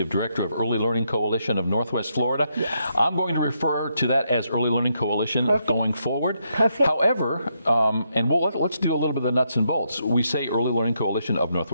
Director of Early Learning Coalition of Northwest Florida. Yes. I'm going to refer to that as Early Learning Coalition going forward. Perfect. However, and let's do a little bit of the nuts and bolts. We say Early Learning Coalition of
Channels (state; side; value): inverted; both; correlation -0.79